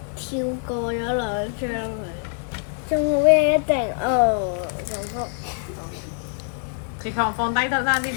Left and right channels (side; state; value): right; silent; 56 dB below the other